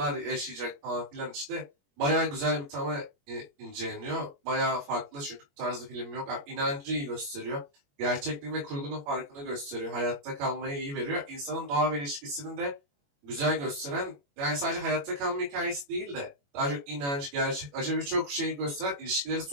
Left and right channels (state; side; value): late; left; 21 ms